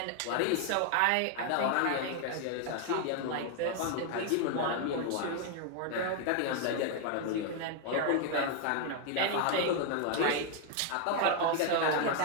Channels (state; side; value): different; both; correlation 0.00